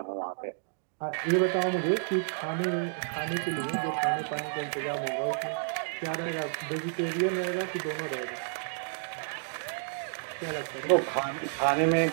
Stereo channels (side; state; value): left; silent; digital silence